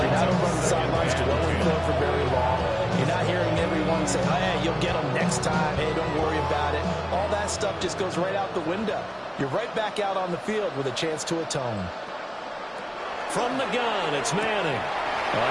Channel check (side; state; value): both; identical; correlation 1.00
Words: not over on the sidelines dwelling for very long. You're not hearing everyone say, hey, you'll get them next time. Hey, don't worry about it. All that stuff just goes right out the window. You're right back out on the field with a chance to atone. From the gun, it's Manning.